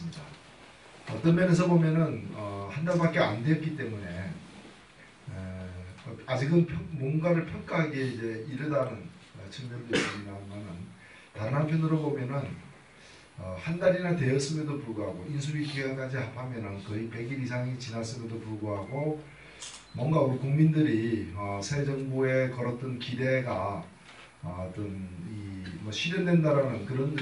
어떤 면에서 보면은 한 달밖에 안 됐기 때문에 아직은 뭔가를 평가하기에 이제 이르다는 측면도 있습니다만은, 다른 한편으로 보면은 한 달이나 되었음에도 불구하고 인수위 기간까지 합하면 거의 100일 이상이 지났음에도 불구하고 뭔가 우리 국민들이 새 정부에 걸었던 기대가 어떤 실현된다라는 그런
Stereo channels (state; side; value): identical; both; correlation 1.00